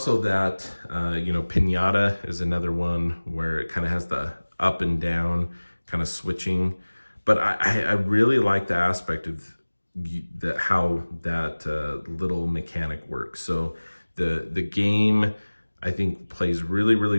that, you know, Pinata is another one where it kind of has the up and down kind of switching. But I really like the aspect of how that little mechanic works. So the game, I think, plays really, really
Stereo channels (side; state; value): both; inverted; correlation -1.00